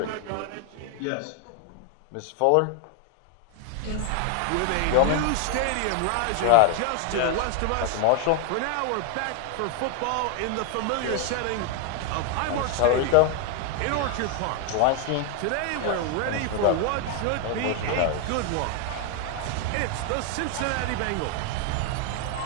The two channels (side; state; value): both; different; correlation 0.00